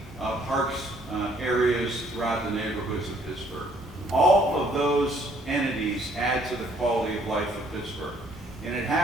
parks areas throughout the neighborhoods of Pittsburgh. All of those entities add to the quality of life of Pittsburgh. And it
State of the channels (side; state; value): both; normal; correlation 0.64